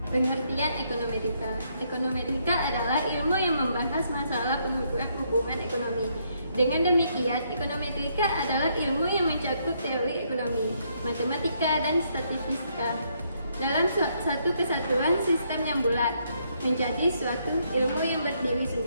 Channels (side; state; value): both; inverted; correlation -0.73